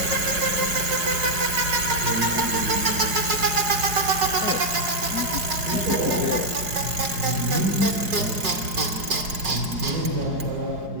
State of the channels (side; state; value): left; late; 5.4 ms